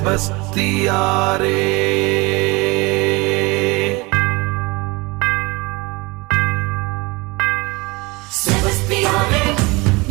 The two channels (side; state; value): left; quieter; 24.9 dB